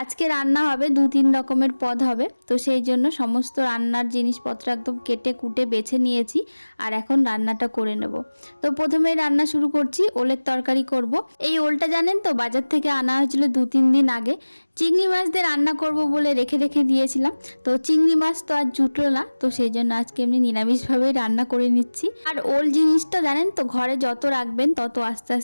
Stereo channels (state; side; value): inverted; both; correlation -1.00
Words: আজকে রান্না হবে 2-3 রকমের পদ হবে, তো সেই জন্য সমস্ত রান্নার জিনিসপত্র একদম কেটে কুটে বেছে নিয়েছি। আর এখন রান্নাটা করে নেব। তো প্রথমেই রান্না শুরু করছি, ওলের তরকারি করব। এই ওলটা জানেন তো, বাজার থেকে আনা হয়েছিল 2-3 দিন আগে। চিংড়ি মাছ দিয়ে রান্না করব বলে রেখে রেখে দিয়েছিলাম, তো চিংড়ি মাছ তো আর জুটলো না, তো সেই জন্য আজকে এমনি নিরামিষভাবেই রান্না করে নিচ্ছি। আর ওল জিনিসটা জানেন তো, ঘরে যত রাখবেন তত আস্তে